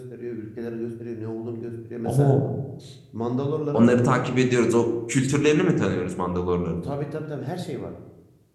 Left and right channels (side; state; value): both; identical; correlation 1.00